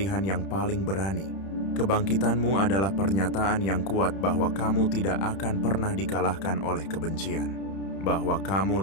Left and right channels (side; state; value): right; late; 31 ms